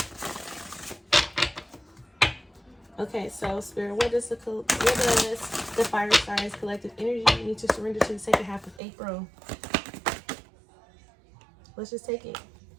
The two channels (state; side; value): drops out; left; at 8.8 s